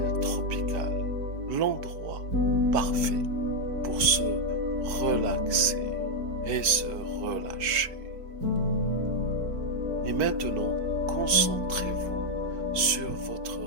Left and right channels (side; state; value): left; late; 4.6 ms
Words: tropicale, l'endroit parfait pour se relaxer et se relâcher. Et maintenant, concentrez-vous sur votre